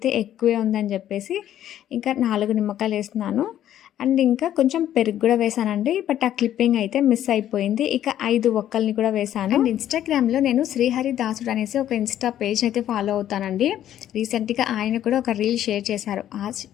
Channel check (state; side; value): quieter; right; 11.5 dB